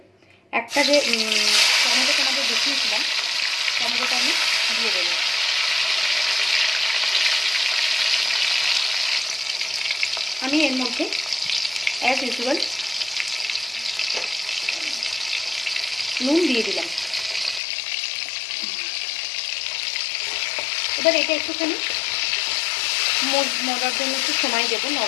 একটা যে টমেটো তোমাদের দেখিয়েছিলাম, টমেটোটা আমি দিয়ে দেব। আমি এর মধ্যে অ্যাজ ইউজুয়াল নুন দিয়ে দিলাম। এবার এটা একটুখানি মরার জন্য একটু সময় দেবো,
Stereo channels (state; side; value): drops out; right; at 17.6 s